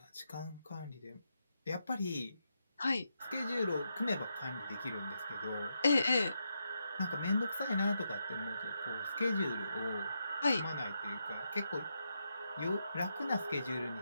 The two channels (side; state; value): both; inverted; correlation -0.83